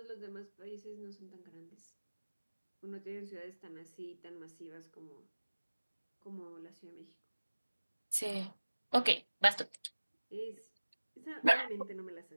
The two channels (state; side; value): inverted; both; correlation -1.00